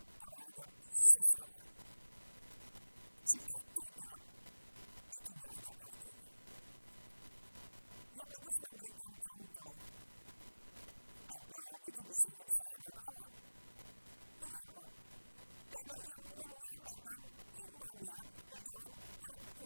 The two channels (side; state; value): both; inverted; correlation -1.00